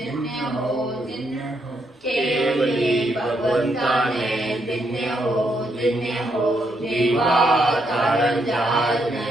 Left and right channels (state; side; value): normal; both; correlation 0.77